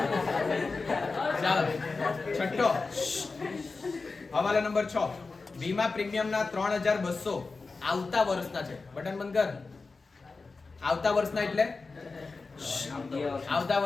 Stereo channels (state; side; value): quieter; right; 4.0 dB